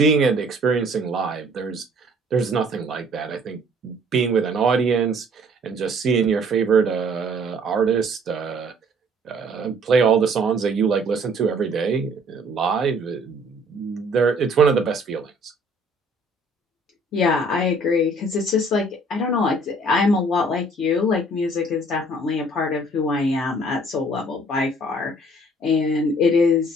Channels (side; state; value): both; normal; correlation 0.57